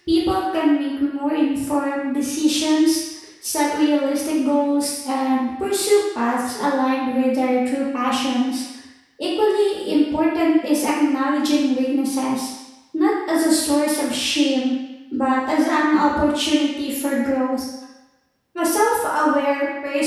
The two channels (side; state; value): both; identical; correlation 1.00